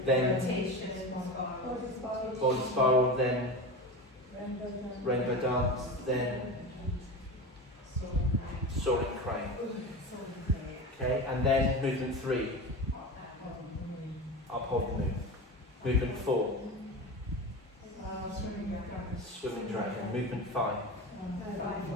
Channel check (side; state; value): both; normal; correlation 0.26